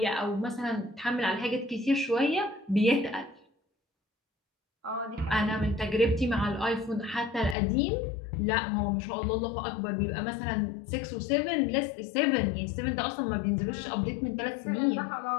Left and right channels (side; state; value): right; drops out; at 7.6 s